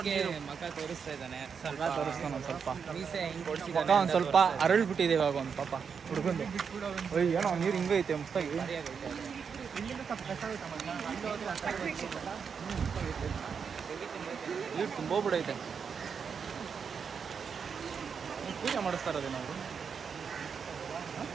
ಮಕ ತೋರಿಸ್ತಾ ಇದ್ದಾನೆ, ತೋರಿಸ್ತಾನ ಒಂದು ಸ್ವಲ್ಪ. ಮೀಸೆ ಹಿಂಗೆ ಮಕ ಒಂದು ಸ್ವಲ್ಪ ಅರಳ್ಬಿಟ್ಟಿದೆ ಇವಾಗ ಒಂದು ಪಾಪ ಹುಡುಗಂದು. ಏನೋ ನೀರು ಹಿಂಗೆ ಐತೆ ಮಸ್ತಾಗಿ. ನೀರು ತುಂಬೋಗ್ಬಿಡೈತೆ. ಪೂಜೆ ಮಾಡಿಸ್ತಾ ಇರೋದೇ ನಾವು,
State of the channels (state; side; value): quieter; left; 6.4 dB